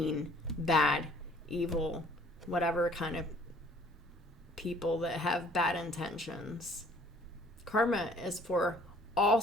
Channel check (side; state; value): both; normal; correlation 0.56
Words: bad, evil, whatever kind of people that have bad intentions. Karma is for all